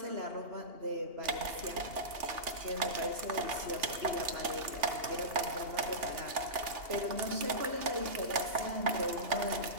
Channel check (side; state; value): left; late; 2.8 ms